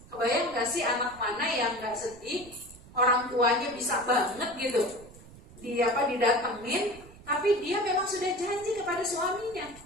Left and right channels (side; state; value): right; noise; rumble, 20 dB below the sound